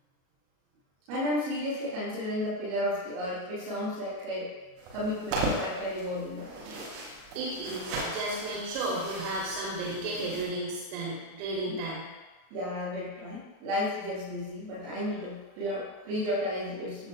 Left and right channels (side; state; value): left; late; 37 ms